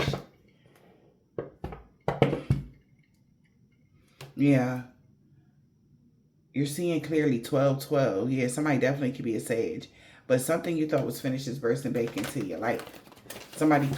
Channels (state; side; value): identical; both; correlation 1.00